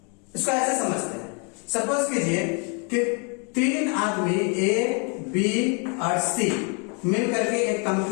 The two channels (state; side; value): quieter; right; 36.1 dB